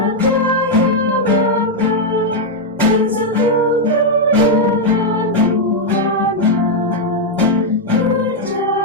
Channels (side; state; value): both; normal; correlation -0.01